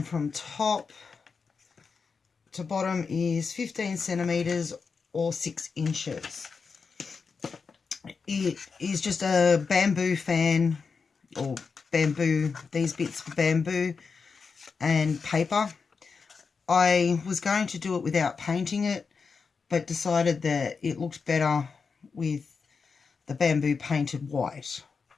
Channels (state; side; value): quieter; right; 5.2 dB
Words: from top to bottom is 15 centimeters or 6 inches. It is just a bamboo fan, or bamboo, these bits of bamboo and paper. I was going to do it without painting it, but decided that it looked better with the bamboo painted white.